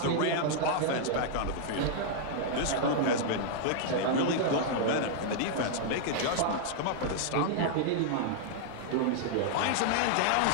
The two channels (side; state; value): both; different; correlation -0.01